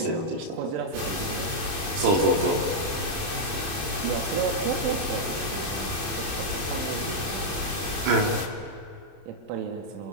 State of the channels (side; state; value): left; late; 30 ms